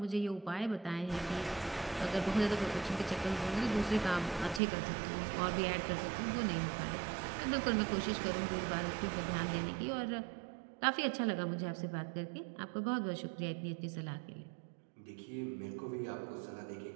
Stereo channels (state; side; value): drops out; left; at 4.6 s